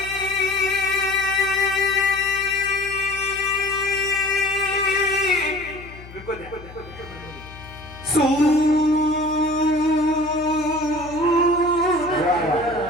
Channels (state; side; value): noise; left; hum, 17 dB below the sound